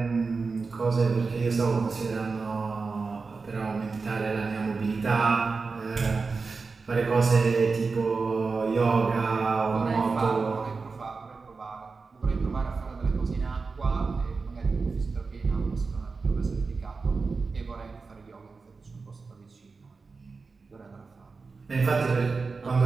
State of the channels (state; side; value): quieter; left; 4.4 dB